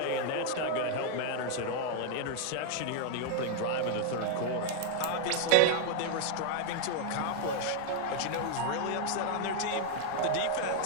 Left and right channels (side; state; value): both; different; correlation 0.00